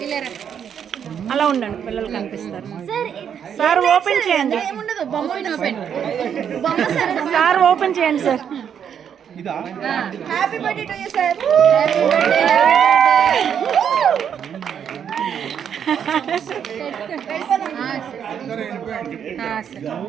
అలా ఉండండి, పిల్లలు కనిపిస్తారు. సార్ ఓపెన్ చేయండి, సార్ ఓపెన్ చేయండి sir. Happy birthday to you sir.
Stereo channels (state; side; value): quieter; left; 8.3 dB